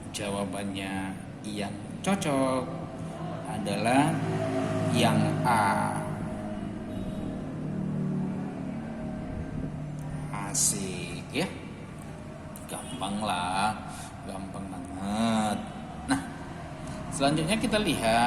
jawabannya yang cocok adalah yang A. Asik ya, gampang lah, gampang banget. Nah, selanjutnya kita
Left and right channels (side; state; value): both; identical; correlation 1.00